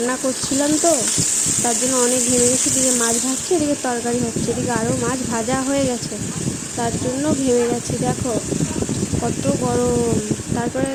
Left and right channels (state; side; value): identical; both; correlation 1.00